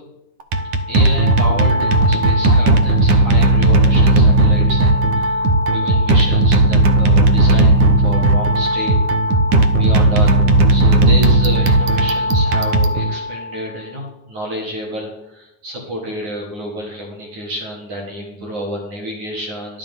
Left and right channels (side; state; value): left; late; 9.8 ms